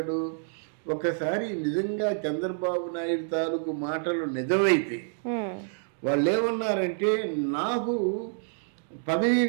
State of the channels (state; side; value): silent; left; digital silence